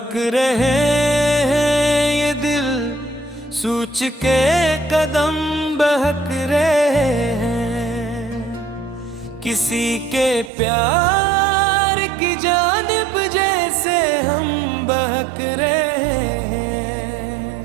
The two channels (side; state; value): left; drops out; at 10.5 s